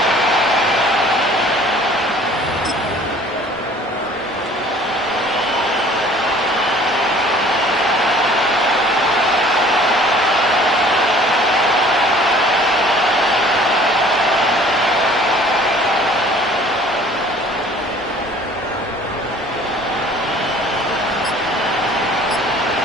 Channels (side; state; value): both; normal; correlation 0.51